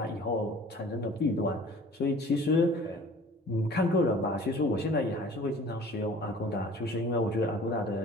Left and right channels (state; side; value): normal; both; correlation 0.48